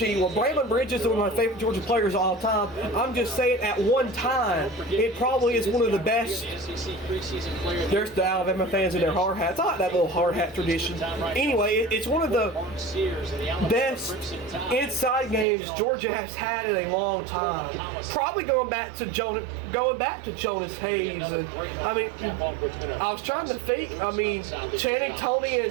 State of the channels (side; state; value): left; drops out; at 15.5 s